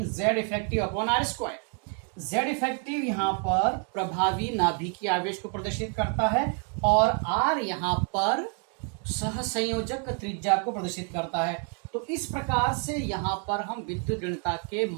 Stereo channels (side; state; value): left; quieter; 39.9 dB